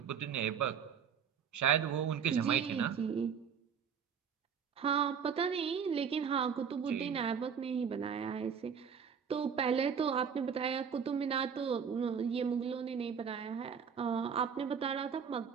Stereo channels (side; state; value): left; quieter; 7.1 dB